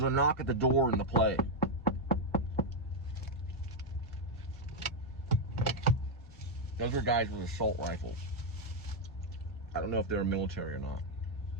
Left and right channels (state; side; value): normal; both; correlation 0.00